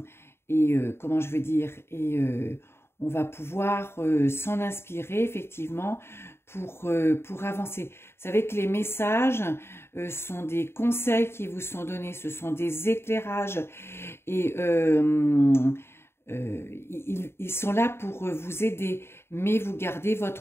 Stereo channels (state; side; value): late; right; 0.12 ms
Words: comment je veux dire, on va pouvoir s'en inspirer effectivement pour avancer. Vous savez que les messages sont des conseils qui vous sont donnés, ce sont des éclairages et ils sont là pour vous aider, mais vous gardez